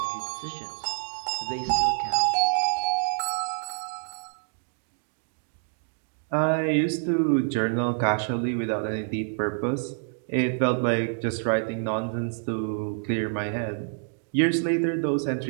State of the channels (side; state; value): left; silent; digital silence